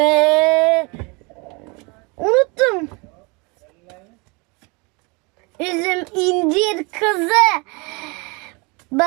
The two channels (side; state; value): left; quieter; 29.0 dB